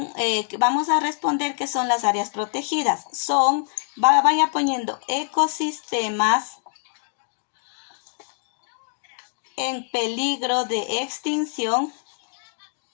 vamos a responder qué son las áreas protegidas. Vaya poniendo ecosistemas en peligro de extinción.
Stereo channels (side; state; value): right; silent; digital silence